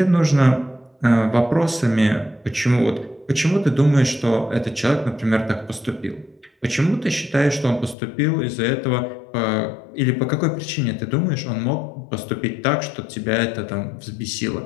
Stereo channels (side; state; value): right; drops out; at 8.0 s